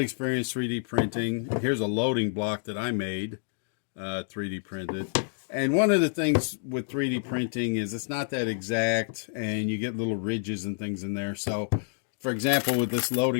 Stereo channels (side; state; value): right; silent; digital silence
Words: experience 3D printing. Here's a loading block that I made 3D printed. And one of the things with 3D printing is it's not that exact, and you get little ridges and things in there. So, for example, with this